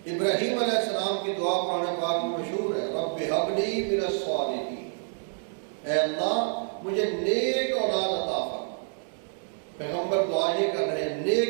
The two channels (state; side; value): silent; left; 59 dB below the other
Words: ابراہیم علیہ السلام کی دعا قرآن پاک میں مشہور ہے، رب ہب لی من الصالحین، اے اللہ مجھے نیک اولاد عطا فرما. پیغمبر دعا یہ کر رہے ہیں